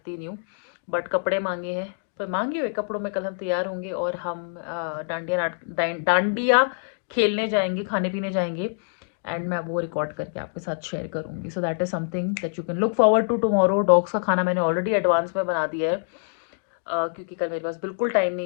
नहीं हूँ, बट कपड़े मांगे हैं, पर मांगे हुए कपड़ों में कल हम तैयार होंगे और हम डांडिया खेलने जाएंगे, खाने पीने जाएंगे, एंड मैं वो रिकॉर्ड करके आपके साथ शेयर करूंगी. So that is something that you can look forward to tomorrow. Dogs का खाना मैंने ऑलरेडी एडवांस में बना दिया है, क्योंकि कल मेरे पास बिल्कुल टाइम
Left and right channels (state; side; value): silent; right; digital silence